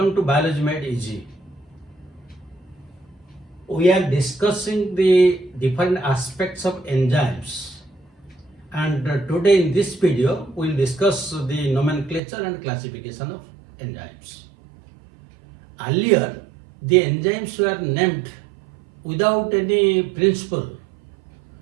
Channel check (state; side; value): drops out; left; at 12.2 s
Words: to Biology Made Easy. We are discussing the different aspects of enzymes, and today in this video we will discuss the nomenclature and classification of enzymes. Earlier, the enzymes were named without any principle,